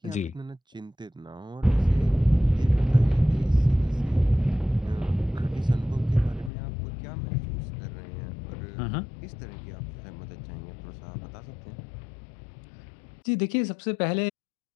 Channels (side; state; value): right; drops out; at 6.5 s